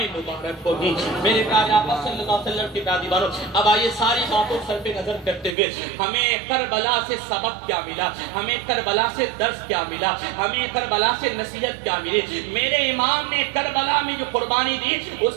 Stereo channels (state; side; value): drops out; left; at 5.6 s